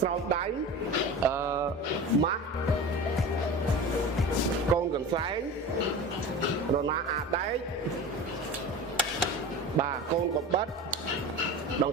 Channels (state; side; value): normal; both; correlation 0.32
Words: ស្រោមដៃម៉ាស់កូនកន្សែងរណាអាដែកបាទកូនកបិតដង